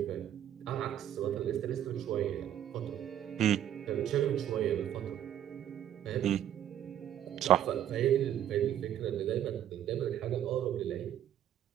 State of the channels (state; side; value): quieter; left; 10.9 dB